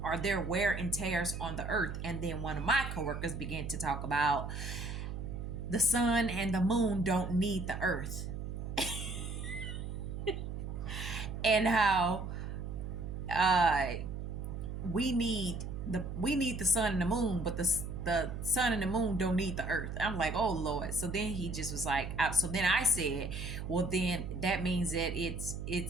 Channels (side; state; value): right; noise; hum, 6 dB below the sound